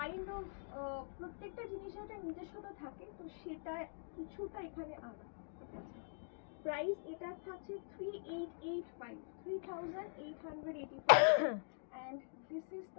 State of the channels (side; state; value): right; silent; digital silence